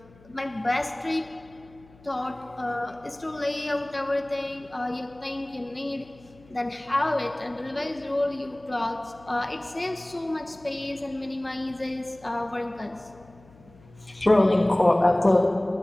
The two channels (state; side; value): noise; left; hum, 25 dB below the sound